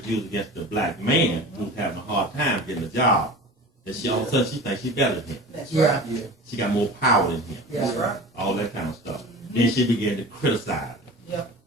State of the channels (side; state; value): both; normal; correlation 0.36